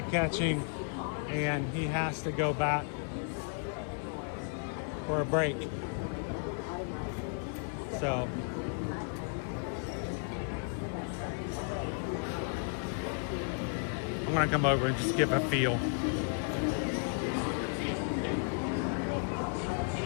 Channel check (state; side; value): silent; right; 55 dB below the other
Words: catch him and he has to go back for a break. So I'm gonna come over and just give a feel.